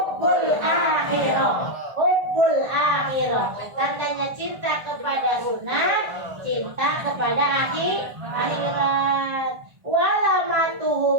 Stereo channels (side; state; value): left; late; 1.3 ms